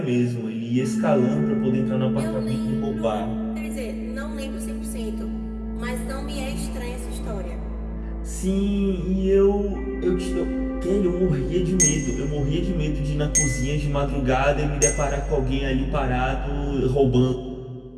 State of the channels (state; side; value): identical; both; correlation 1.00